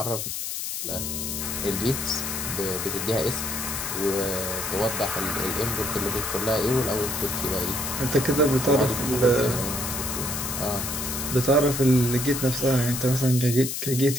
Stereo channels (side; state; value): left; noise; hiss, 4 dB below the sound